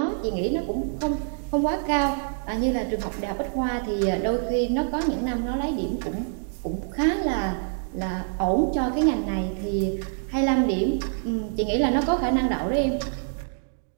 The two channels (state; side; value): silent; left; digital silence